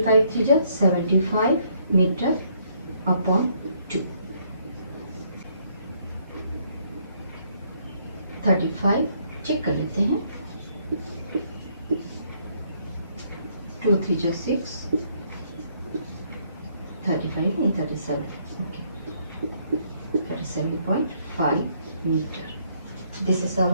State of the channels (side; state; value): both; inverted; correlation -0.68